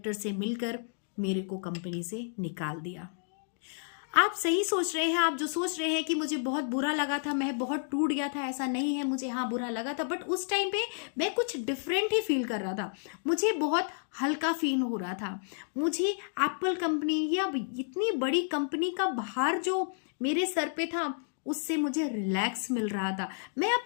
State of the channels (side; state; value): right; silent; digital silence